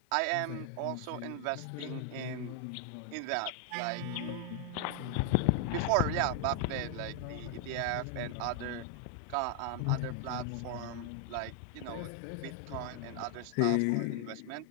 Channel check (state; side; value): different; both; correlation 0.00